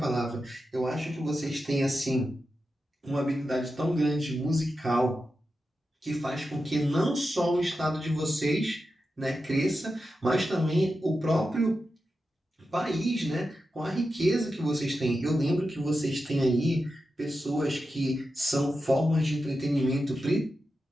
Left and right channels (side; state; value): both; normal; correlation 0.90